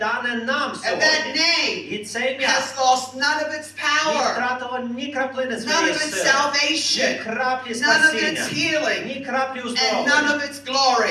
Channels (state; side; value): identical; both; correlation 1.00